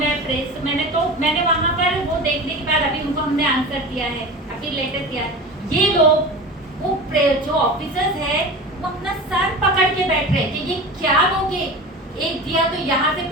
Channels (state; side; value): normal; both; correlation 0.31